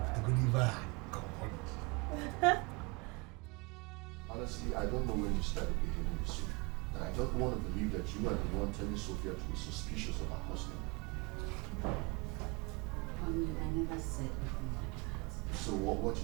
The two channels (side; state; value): left; quieter; 28.2 dB